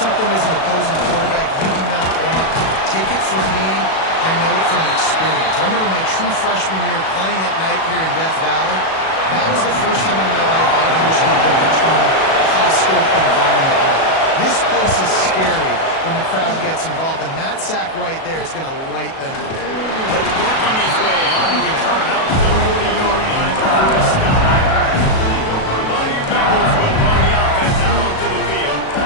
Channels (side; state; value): right; late; 37 ms